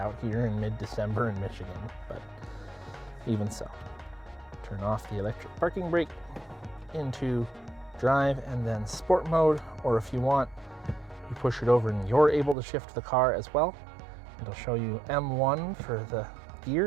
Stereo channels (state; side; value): drops out; left; at 12.6 s